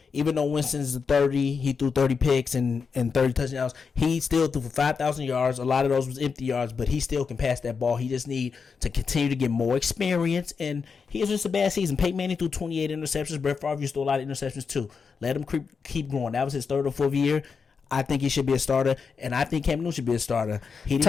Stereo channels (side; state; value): right; quieter; 5.5 dB